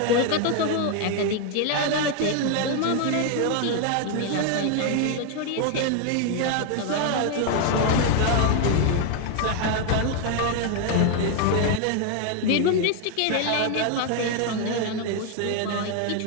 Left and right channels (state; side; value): different; both; correlation 0.01